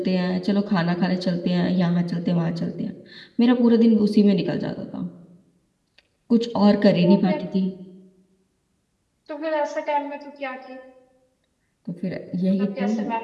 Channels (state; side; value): identical; both; correlation 1.00